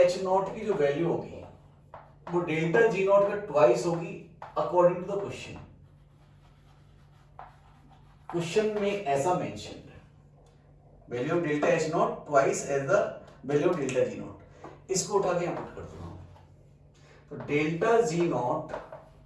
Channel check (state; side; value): identical; both; correlation 1.00